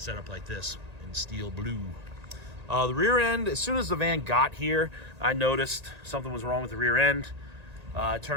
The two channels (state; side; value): late; left; 1.9 ms